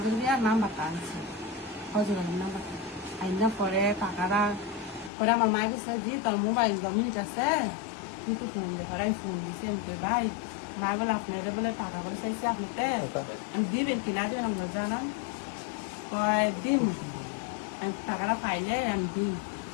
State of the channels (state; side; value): drops out; right; at 5.1 s